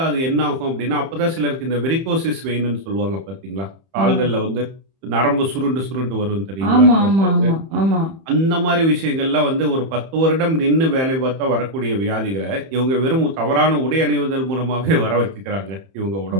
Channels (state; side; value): late; left; 31 ms